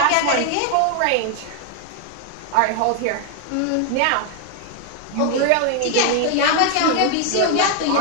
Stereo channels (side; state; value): both; different; correlation 0.00